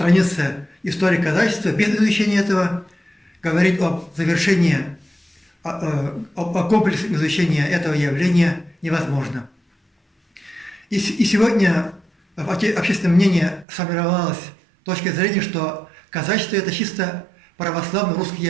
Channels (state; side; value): drops out; left; at 13.7 s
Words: истории казачества. Без изучения этого говорить об завершении, о комплексном изучении этого явления невозможно. И сегодня в общественном мнении сформировалась точка зрения, что казачество – это чисто православно-русское